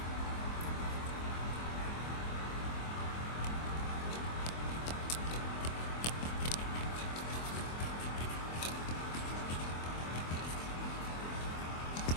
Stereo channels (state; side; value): late; right; 24 ms